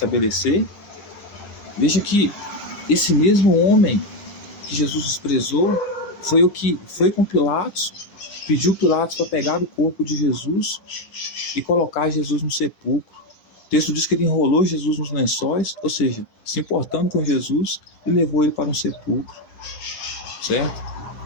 Veja que esse mesmo homem que Jesus desprezou foi o que foi com Pilatos, pediu Pilatos para pegar o corpo de Jesus e colocar Jesus no sepulcro. O texto diz que ele enrolou Jesus nos lençóis, ou seja, se importando com Jesus, e levou ele para um sepulcro, certo?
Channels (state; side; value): late; right; 11 ms